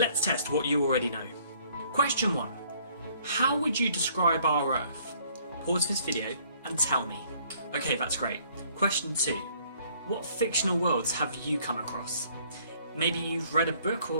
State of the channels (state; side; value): inverted; both; correlation -0.61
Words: test what you already know. Question 1. How would you describe our Earth? Pause this video and tell me. Okay, that's great. Question 2. What fictional worlds have you come across? Maybe you've read a book